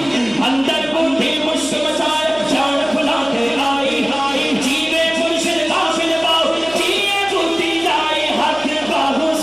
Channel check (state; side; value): noise; right; hum, 22 dB below the sound